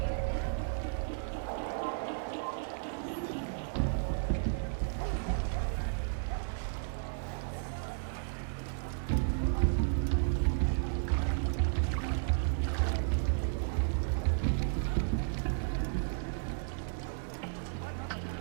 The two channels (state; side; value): silent; left; 55 dB below the other